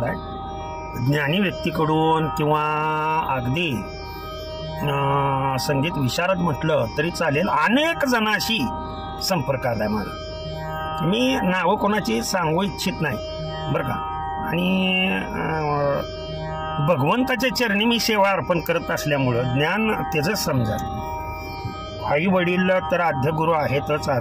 आहे ज्ञानी व्यक्तीकडून किंवा अगदी संगीत विशारद म्हटलं तरी चालेल, अनेक जणांशी संपर्क आलाय माझा. मी नावं कोणाची सांगू इच्छित नाही बरं का. आणि भगवंताच्या चरणी मी सेवा अर्पण करत असल्यामुळं ज्ञान त्याचं समजा. आई वडील तर आद्यगुरू आहेतच,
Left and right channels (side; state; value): both; identical; correlation 1.00